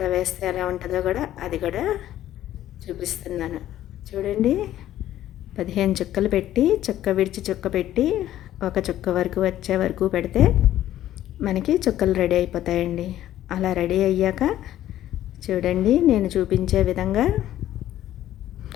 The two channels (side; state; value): right; quieter; 12.9 dB